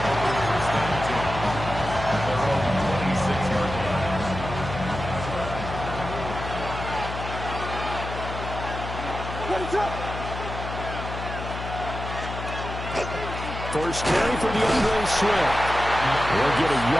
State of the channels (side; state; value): left; noise; hum, 7 dB below the sound